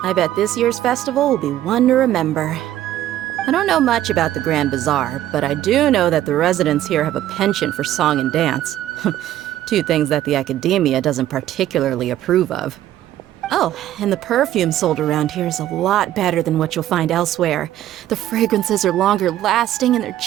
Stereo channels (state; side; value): quieter; left; 12.9 dB